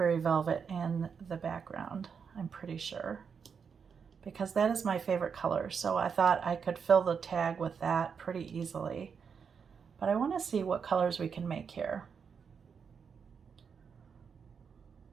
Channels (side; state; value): left; quieter; 6.4 dB